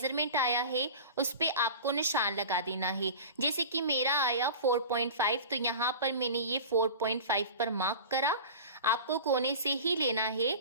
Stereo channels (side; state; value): both; inverted; correlation -0.35